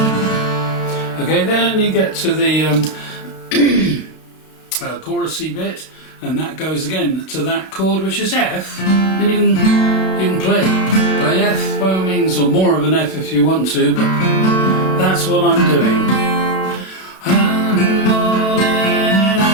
Okay, then you get to the chorusy bit, and that goes again to that chord, which is F, and you can play F by all means, or more of an F if you want to, but that's what I'm doing. One morning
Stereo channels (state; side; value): late; right; 32 ms